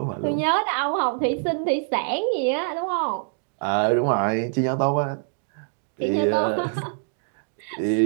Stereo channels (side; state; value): left; silent; digital silence